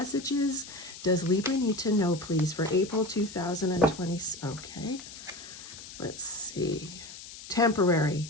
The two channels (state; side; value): noise; left; hiss, 14 dB below the sound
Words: does Libra need to know, please, for April 2020? Okay, let's see. Temporary.